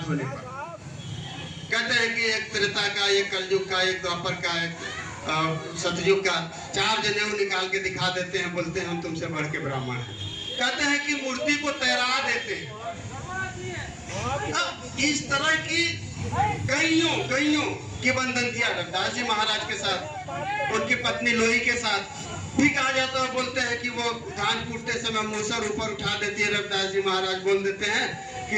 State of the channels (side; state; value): both; identical; correlation 1.00